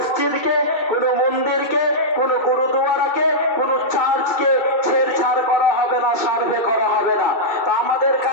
কোনো মন্দিরকে, কোনো গুরুদুয়ারাকে, কোনো চার্চকে ছেড়ছাড় করা হবে না, সার্ভে করা হবে না। তো আমাদের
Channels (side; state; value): right; late; 2.6 ms